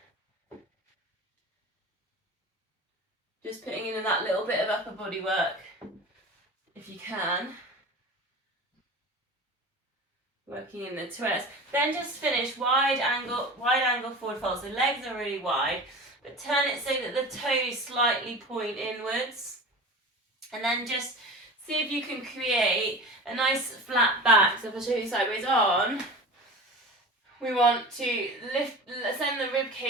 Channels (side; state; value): both; normal; correlation 0.34